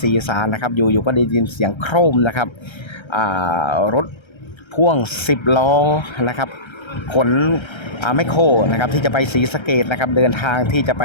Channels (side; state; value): right; late; 1.3 ms